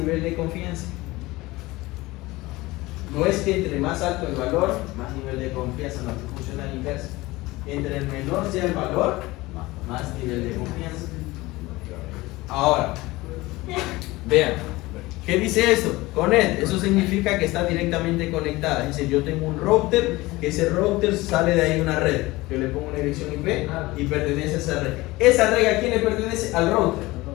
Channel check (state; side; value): quieter; right; 20.3 dB